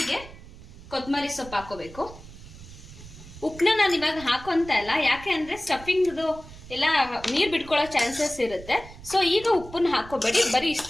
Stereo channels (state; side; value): noise; right; rumble, 17 dB below the sound